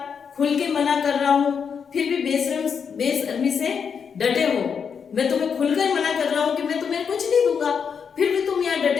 खुल के मना कर रहा हूँ फिर भी बेशर्मी से डटे हो। मैं तुम्हें खुलकर मना कर रहा हूँ कि मैं तुम्हें कुछ नहीं दूंगा, फिर भी तुम यहाँ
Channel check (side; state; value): right; quieter; 6.6 dB